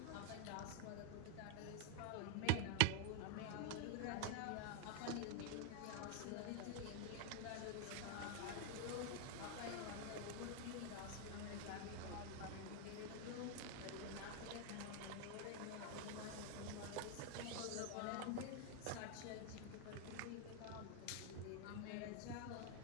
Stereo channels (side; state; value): both; different; correlation 0.01